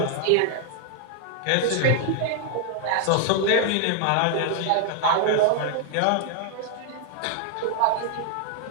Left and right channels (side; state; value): both; different; correlation 0.00